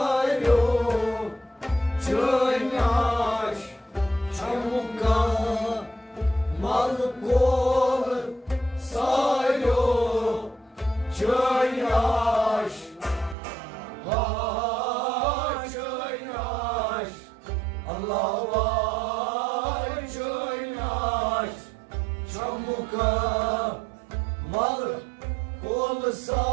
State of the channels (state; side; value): drops out; left; at 13.4 s